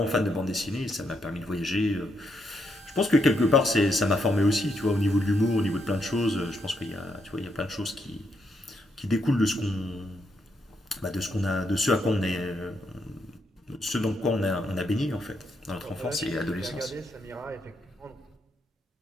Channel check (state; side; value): normal; both; correlation 0.78